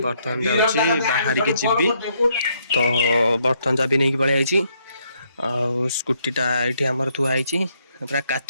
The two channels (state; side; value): inverted; both; correlation -0.72